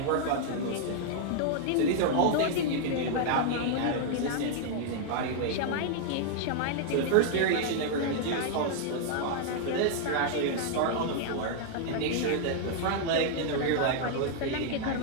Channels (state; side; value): different; both; correlation 0.00